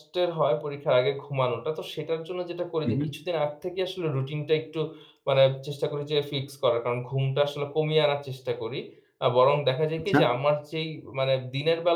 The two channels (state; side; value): identical; both; correlation 1.00